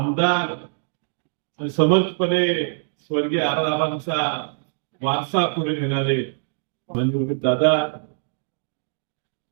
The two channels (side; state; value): left; silent; digital silence